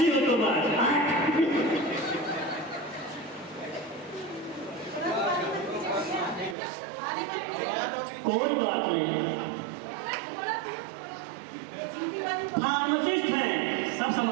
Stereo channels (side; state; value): left; drops out; at 6.6 s